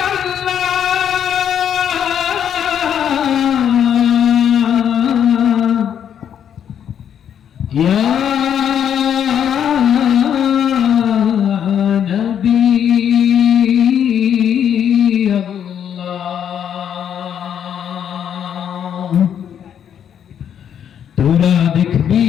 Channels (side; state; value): right; quieter; 9.0 dB